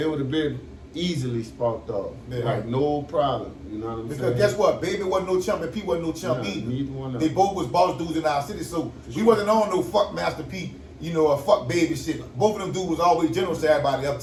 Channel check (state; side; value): identical; both; correlation 1.00